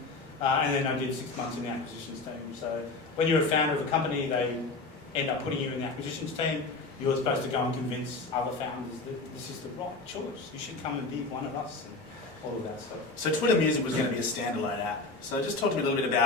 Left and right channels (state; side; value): quieter; right; 3.5 dB